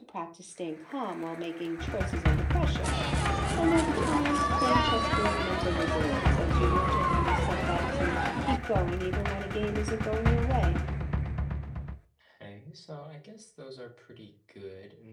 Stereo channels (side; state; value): both; identical; correlation 1.00